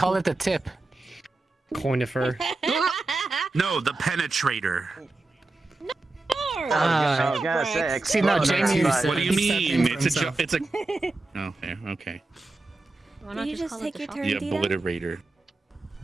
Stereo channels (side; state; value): left; quieter; 3.1 dB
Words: it the tip. Coinifer. No, the penetrator. I was gonna say, See, no, Jamie. What do you mean? It's a. Okay, okay. Why Did not you just call it take the your shocker? turn, The Dita? obliterator.